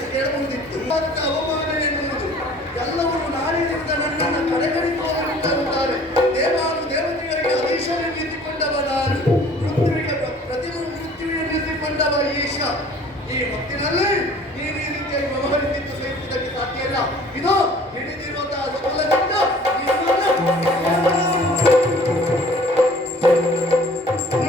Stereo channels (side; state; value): both; normal; correlation 0.51